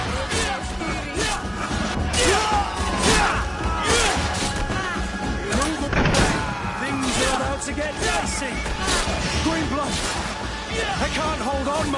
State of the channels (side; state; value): both; identical; correlation 1.00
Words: To get dicey. Green blood. I can't hold on